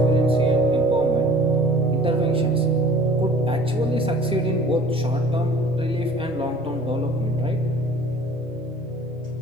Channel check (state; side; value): normal; both; correlation 0.49